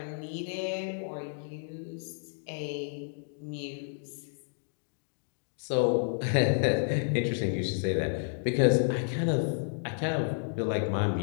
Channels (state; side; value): silent; right; digital silence